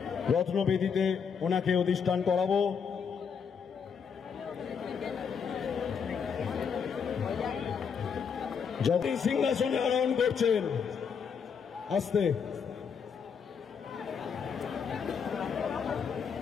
রত্নবেদিতে ওনাকে অধিষ্ঠান করাবো। যতই সিংহাসনে আরোহণ করছেন, আস্তে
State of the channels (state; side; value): quieter; right; 6.5 dB